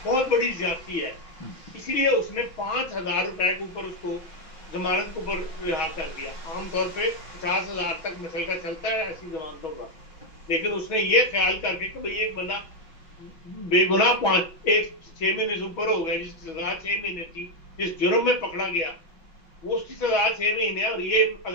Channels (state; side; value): late; right; 6.2 ms